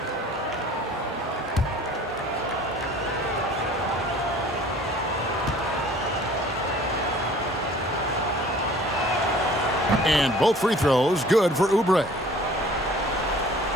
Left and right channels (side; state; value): both; normal; correlation 0.50